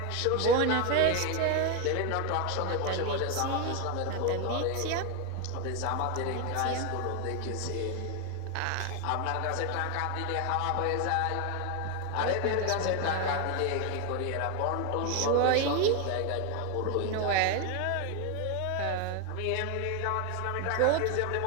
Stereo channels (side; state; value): both; different; correlation 0.01